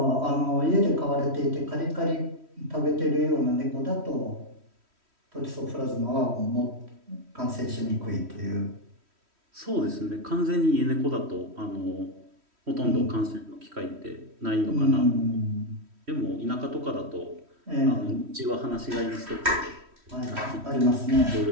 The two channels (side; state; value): left; late; 3.1 ms